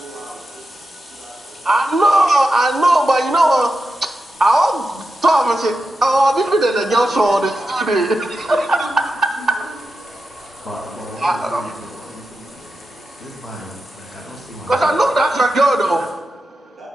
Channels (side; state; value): both; normal; correlation 0.90